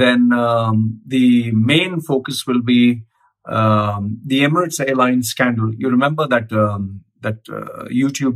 the main focus will be the Emirates Airlines scandal. You remember that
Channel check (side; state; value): both; identical; correlation 1.00